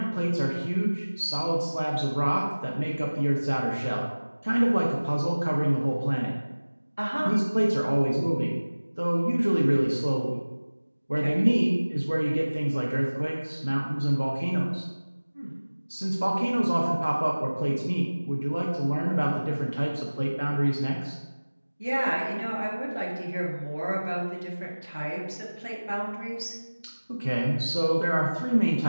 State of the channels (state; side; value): inverted; both; correlation -1.00